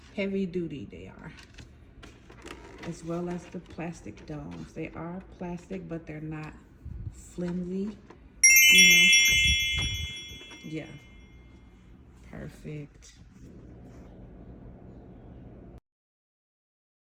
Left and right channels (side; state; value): both; identical; correlation 1.00